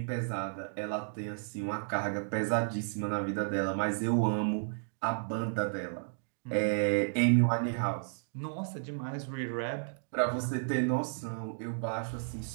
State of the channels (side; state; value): left; silent; digital silence